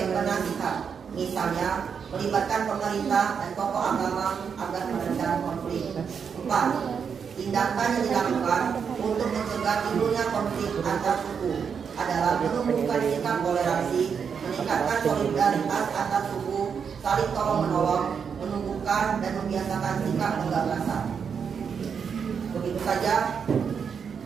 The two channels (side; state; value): left; quieter; 6.7 dB